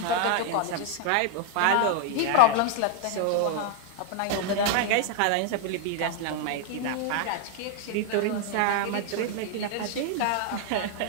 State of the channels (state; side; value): different; both; correlation 0.00